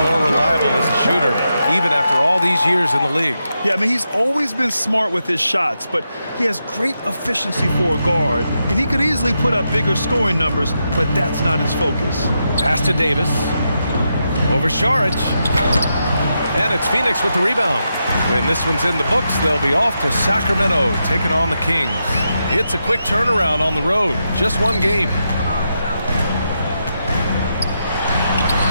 reliable as a shooter, even after all these years in the league. Yeah, I mean, he's always been smart with his shots, but he has great efficiency for a guard, and he could easily put up bigger scoring numbers, but that's not his focus. Pass to Davis. Over Saric. And it's Phoenix with the rebound. When this one's in the books, they'll be off to Sacramento, taking on the Kings. It's a quick turnaround on the road. Just one game.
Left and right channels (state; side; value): inverted; both; correlation -0.85